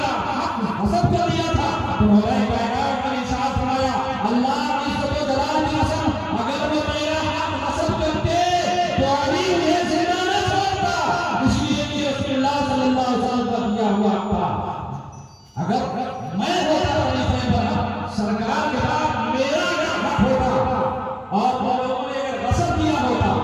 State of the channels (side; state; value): both; identical; correlation 1.00